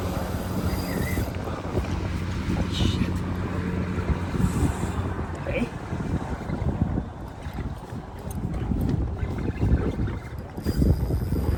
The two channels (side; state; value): both; identical; correlation 1.00